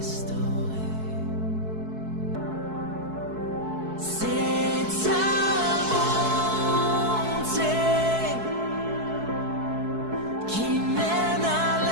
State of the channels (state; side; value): late; left; 4.6 ms